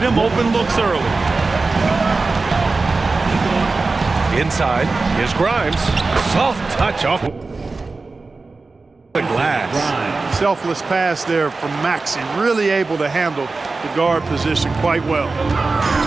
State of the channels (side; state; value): left; quieter; 3.8 dB